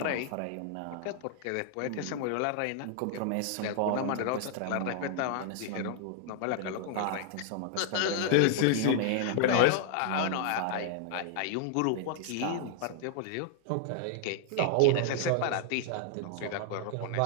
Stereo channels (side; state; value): both; different; correlation 0.00